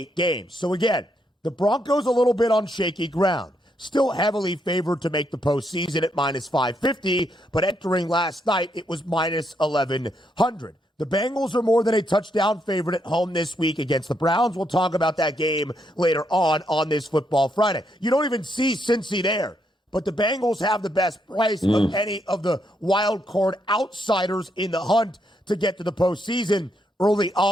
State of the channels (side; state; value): both; normal; correlation 0.77